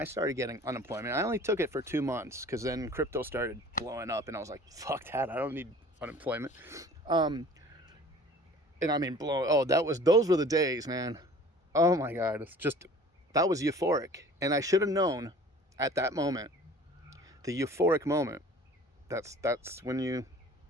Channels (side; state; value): both; normal; correlation 0.47